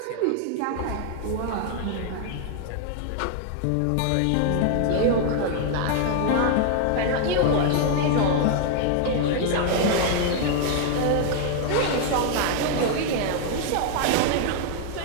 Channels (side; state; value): both; different; correlation 0.00